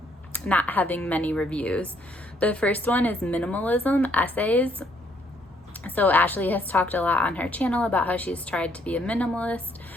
having many reviews. The first one is Minimalism Essays. So Ashley has talked a lot on her channel about how she's tried to be a minimalist,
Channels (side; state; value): both; normal; correlation 0.68